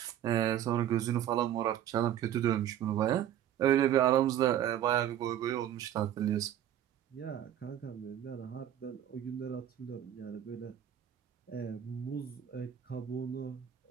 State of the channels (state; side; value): quieter; left; 10.9 dB